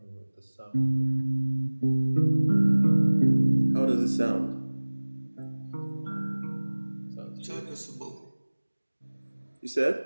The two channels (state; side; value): inverted; both; correlation -1.00